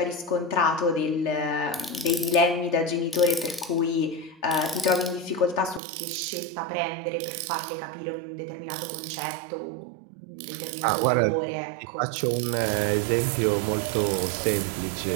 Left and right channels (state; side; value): drops out; left; at 5.8 s